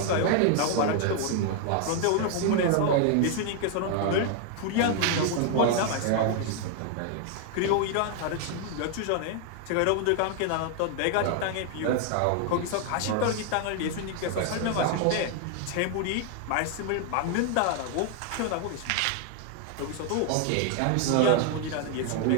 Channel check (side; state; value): both; different; correlation 0.00